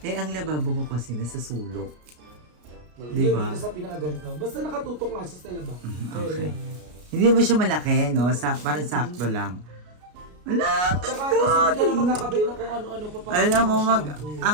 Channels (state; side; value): late; left; 33 ms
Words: Eh, ang lababo ko kasi nasa sulok. Di Diba? Dito sa pinakaganto. Basta nakatutok nga siya sa labas. Okay. Hindi mo siya malaki, no? Parang sakto lang. Wala, ang Saka ganda! kasi hindi ka na magkakabit na kung ano-ano pa pa. Alam mo,